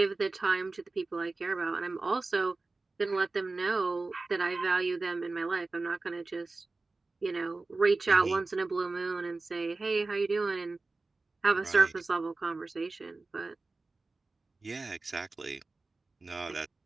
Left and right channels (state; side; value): quieter; left; 3.5 dB